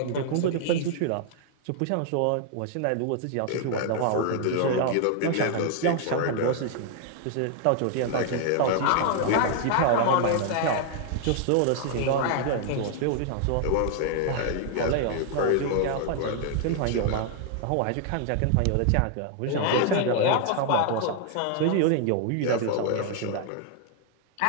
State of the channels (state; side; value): different; both; correlation 0.00